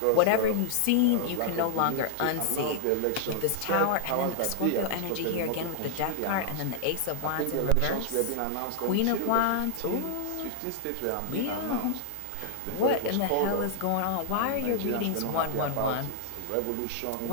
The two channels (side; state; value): both; different; correlation -0.01